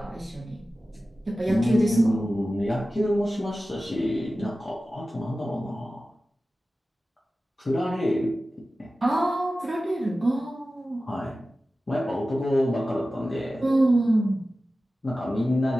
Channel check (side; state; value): both; normal; correlation 0.95